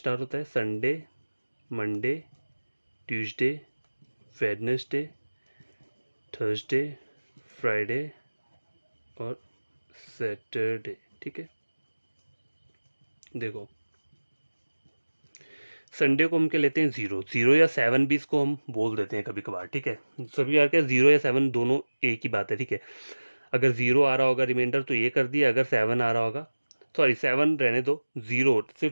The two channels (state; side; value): inverted; both; correlation -1.00